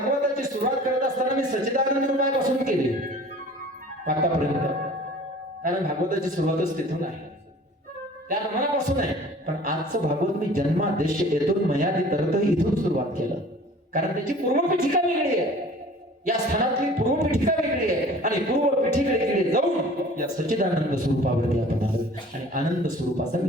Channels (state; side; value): normal; both; correlation 0.46